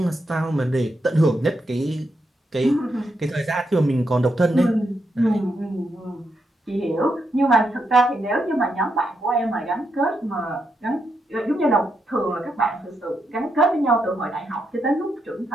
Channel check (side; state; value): both; normal; correlation 0.82